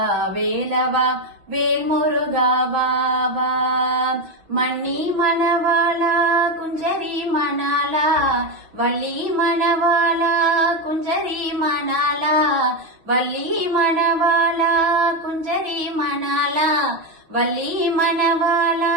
வேலவா வேல்முருகாவா மணி மணவாளா குஞ்சரி மணாலா வள்ளி மணவாளா குஞ்சரி மணாலா வள்ளி மணவாளா குஞ்சரி மணாலா வள்ளி மணவாளா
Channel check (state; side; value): late; left; 6.1 ms